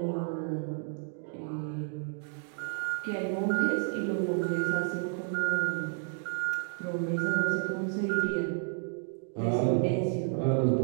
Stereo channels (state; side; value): silent; left; 56 dB below the other